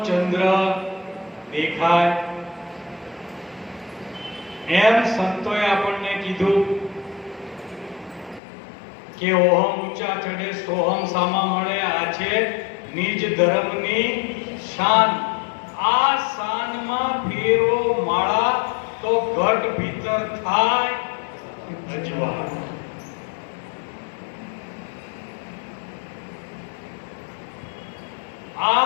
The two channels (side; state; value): right; drops out; at 8.4 s